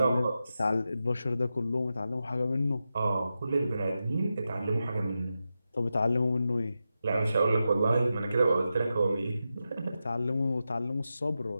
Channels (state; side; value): inverted; both; correlation -0.90